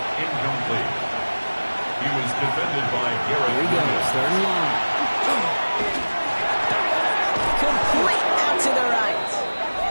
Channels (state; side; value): inverted; both; correlation -1.00